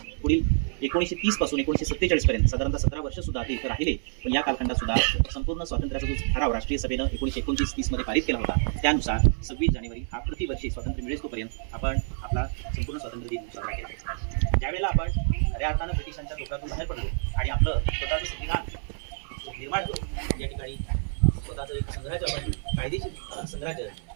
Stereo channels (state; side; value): silent; left; 60 dB below the other